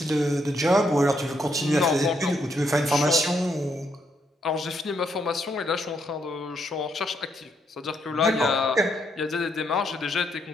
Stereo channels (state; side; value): normal; both; correlation 0.75